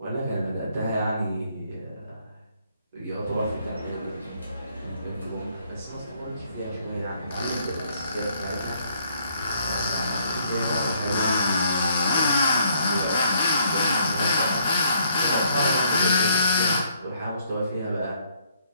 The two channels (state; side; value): inverted; both; correlation -0.68